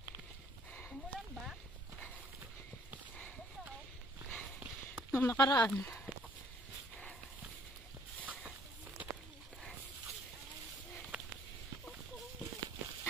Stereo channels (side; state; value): both; normal; correlation 0.58